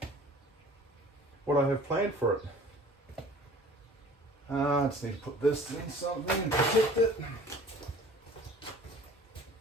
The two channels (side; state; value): both; normal; correlation 0.47